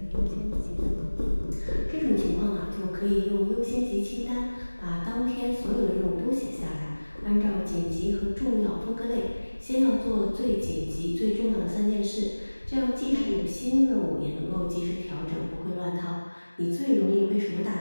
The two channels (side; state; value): both; inverted; correlation -1.00